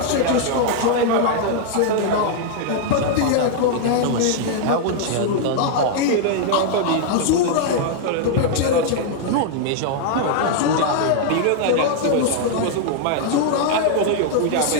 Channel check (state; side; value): different; both; correlation -0.01